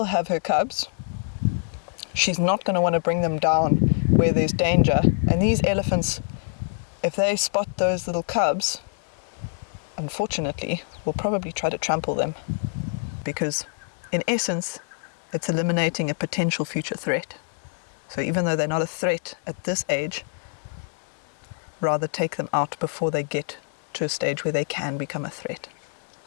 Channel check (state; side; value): silent; right; digital silence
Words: have her cubs, she's not going to want to bring them down where there's danger. And these elephants, if they spot those little cubs, unfortunately, will probably try to trample them, because in essence, it's eliminating a potential future threat. So even though they're not a threat at this age, rather take them out before they get to a stage where they can become a threat.